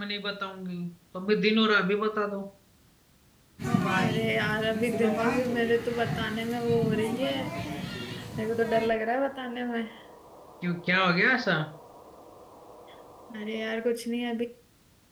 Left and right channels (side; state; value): both; identical; correlation 1.00